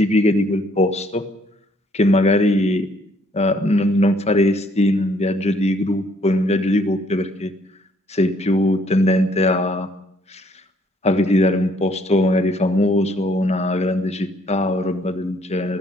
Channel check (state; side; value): normal; both; correlation 0.65